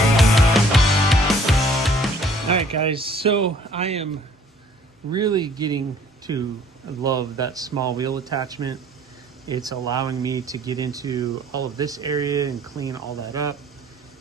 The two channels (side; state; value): both; normal; correlation 0.57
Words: Alright guys, so I am really getting to love that small wheel attachment. It's allowing me to get into all of this area and clean all that up